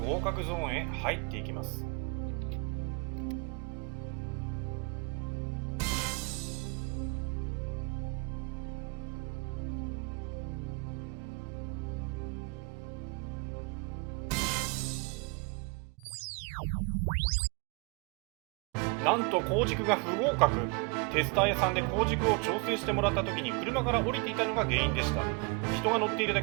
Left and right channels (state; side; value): quieter; left; 30.8 dB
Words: 格ゾーンへ入っていきます。なんと鋼軸が不合格。テスター屋さんで鋼軸を調整してもらった時に車から降りていたのが原因でした。人が乗っているだ